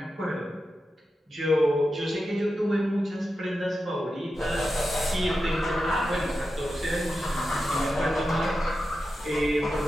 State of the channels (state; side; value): normal; both; correlation 0.90